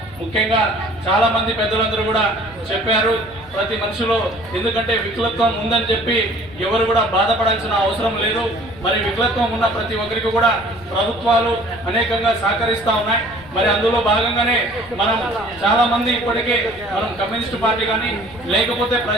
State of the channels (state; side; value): noise; left; rumble, 21 dB below the sound